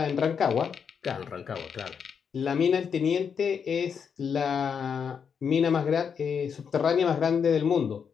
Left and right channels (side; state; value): right; quieter; 6.8 dB